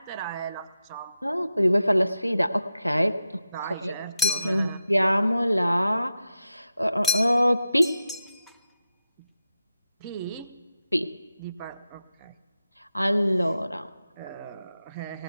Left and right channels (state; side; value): inverted; both; correlation -0.89